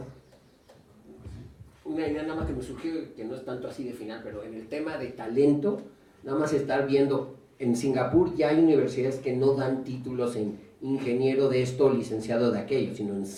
Una idea nada más que me surgió, que no es tanto así de final, pero en el tema de talento, nada más estar viendo, en Singapur ya hay universidades que no dan títulos en ingeniero de esto o licenciado de aquello, sino en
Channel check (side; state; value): both; identical; correlation 1.00